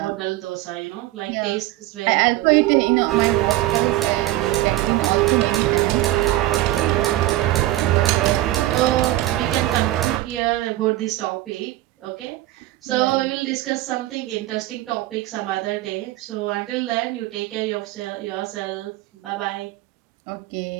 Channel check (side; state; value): left; quieter; 16.2 dB